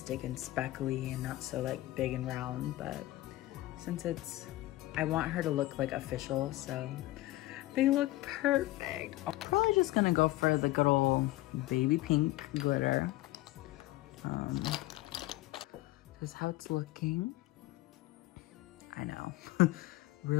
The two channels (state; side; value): quieter; right; 17.6 dB